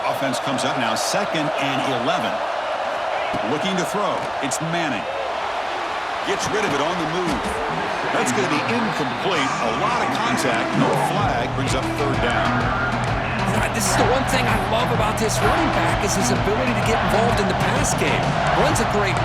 Offense comes up now 2nd and 11. Looking to throw. It's Manning. Gets rid of it on the move. That's going to be incomplete. A lot of contact. No flag. Brings up 3rd down. This is the one thing I love about this running back is his ability to get involved in the pass game. Runs a great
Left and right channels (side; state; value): both; identical; correlation 1.00